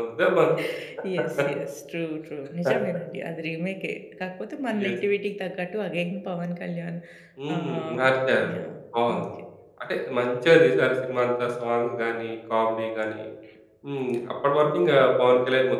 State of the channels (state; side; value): identical; both; correlation 1.00